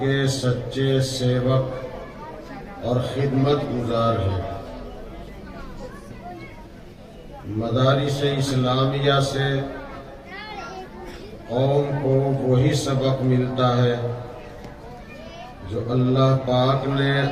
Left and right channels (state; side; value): identical; both; correlation 1.00